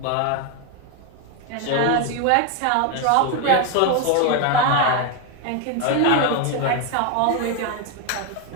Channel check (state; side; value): different; both; correlation 0.01